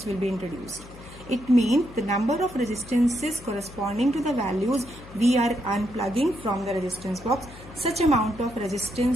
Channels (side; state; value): left; noise; hum, 18 dB below the sound